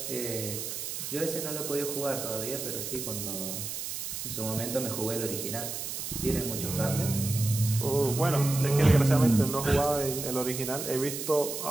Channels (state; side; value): noise; right; hiss, 5 dB below the sound